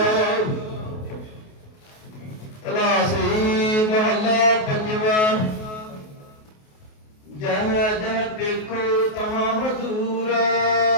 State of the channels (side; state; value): right; late; 28 ms